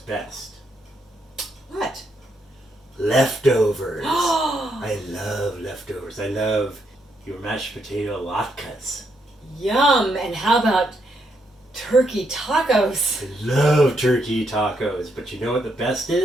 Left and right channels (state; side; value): normal; both; correlation 0.78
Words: What? Leftovers. I love leftovers. I love your mashed potato latkes. Yum! And how about turkey tacos? I love turkey tacos, but you know what the best